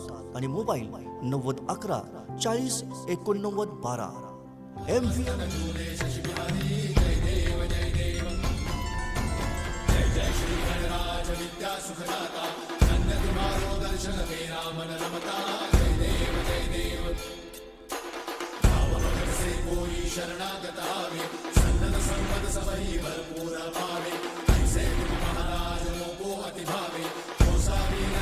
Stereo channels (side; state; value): both; identical; correlation 1.00